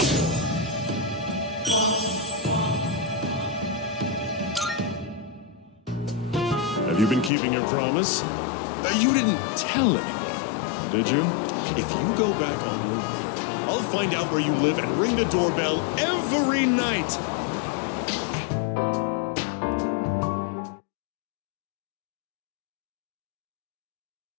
Have you been keeping your promise? You didn't tell anyone, did you? If you go back on your word, I'll find out where you live and ring the doorbell every night.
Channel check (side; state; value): right; drops out; at 7.3 s